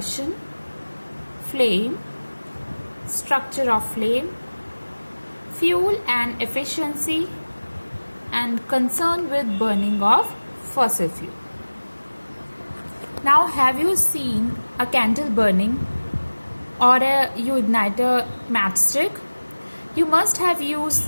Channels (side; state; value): both; inverted; correlation -1.00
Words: flame, structure of flame, fuel and efficiency, and concern with burning of fossil fuel. Now, have you seen a candle burning or you ignite a matchstick? You must have